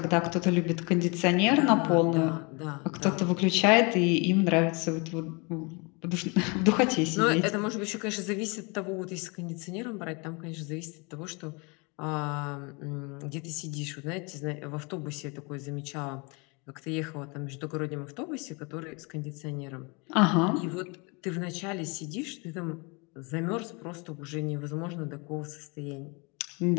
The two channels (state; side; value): quieter; right; 30.1 dB